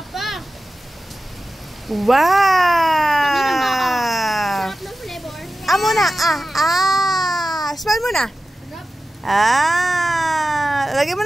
Wow! Sarap ng flavor. Muna. Smile muna. Lagyan mo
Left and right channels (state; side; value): normal; both; correlation 0.94